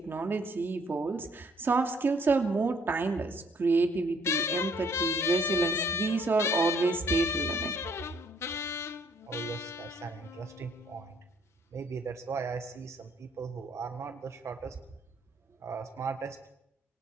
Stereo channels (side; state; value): both; normal; correlation 0.64